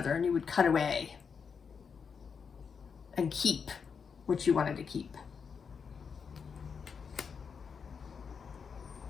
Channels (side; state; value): right; quieter; 6.1 dB